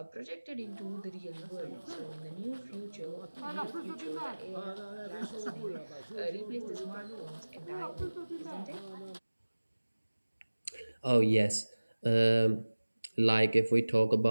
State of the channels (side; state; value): both; inverted; correlation -1.00